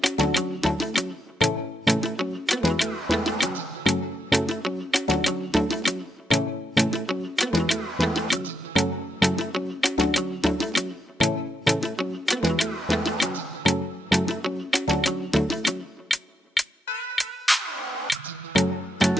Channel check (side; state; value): both; normal; correlation 0.82